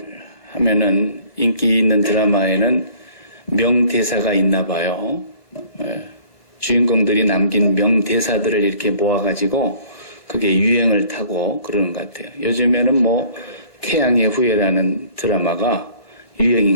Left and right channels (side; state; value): right; late; 1.5 ms